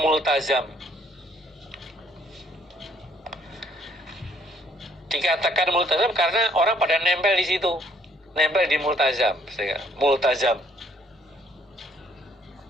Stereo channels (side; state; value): both; normal; correlation 0.64